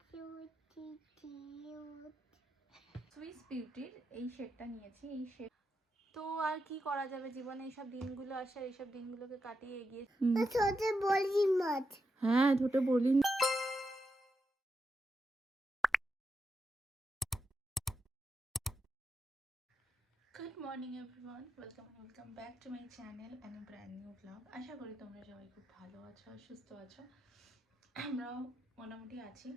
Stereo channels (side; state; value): both; normal; correlation 0.85